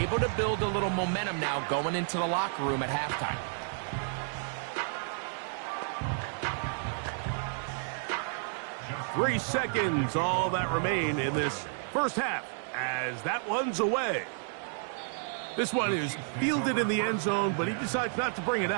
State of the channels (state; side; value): silent; left; 57 dB below the other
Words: to build a little momentum now going into the locker room at halftime. Three seconds, all that remain in this first half, as that one's away. This one is fielded in the end zone, but he decides not to bring it